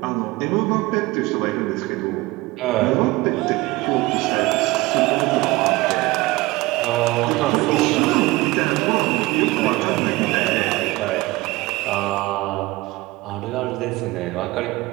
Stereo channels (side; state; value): left; quieter; 20.7 dB